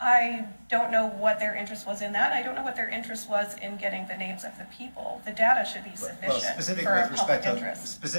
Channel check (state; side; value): inverted; both; correlation -1.00